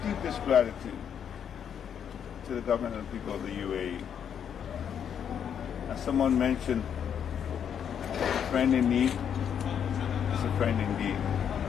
deepest gratitude to the government and people of the UAE. As someone mentioned, a friend in need is a friend indeed.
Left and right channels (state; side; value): quieter; right; 8.3 dB